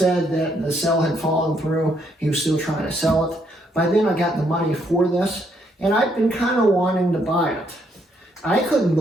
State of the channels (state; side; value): normal; both; correlation 0.73